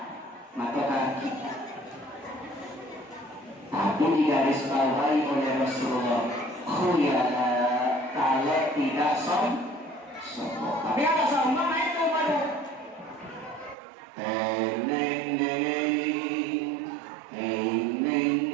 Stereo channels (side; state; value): left; drops out; at 13.8 s